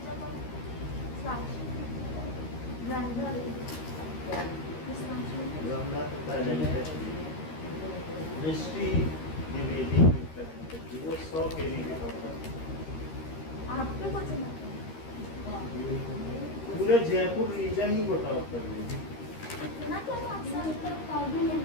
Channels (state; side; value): late; right; 13 ms